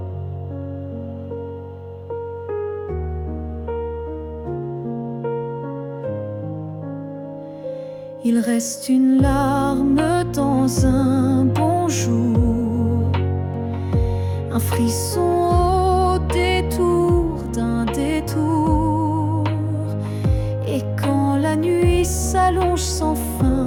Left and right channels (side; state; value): both; identical; correlation 1.00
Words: Il reste une larme dans un bonjour, un frisson au détour d'un détour. Et quand la nuit s'allonge sans